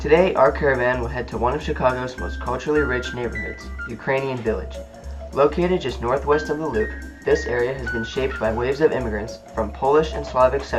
our caravan will head to one of Chicago's most culturally rich neighborhoods, Ukrainian Village. Located just northwest of the Loop, this area has been shaped by waves of immigrants, from Polish and Slavic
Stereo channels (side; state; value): both; identical; correlation 1.00